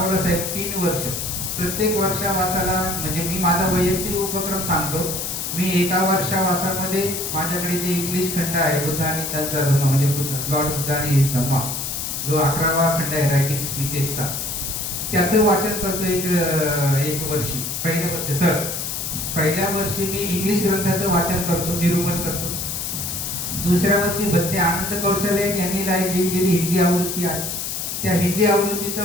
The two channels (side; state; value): left; noise; hiss, 4 dB below the sound